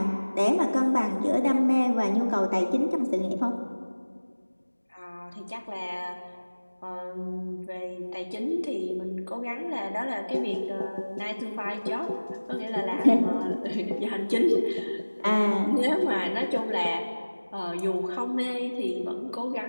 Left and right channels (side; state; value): both; inverted; correlation -1.00